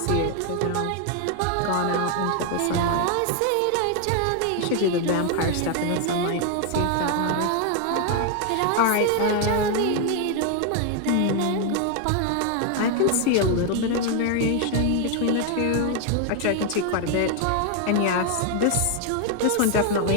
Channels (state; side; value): different; both; correlation 0.00